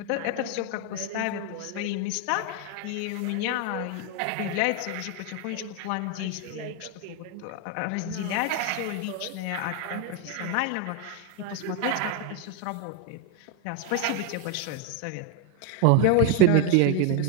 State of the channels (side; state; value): both; different; correlation 0.01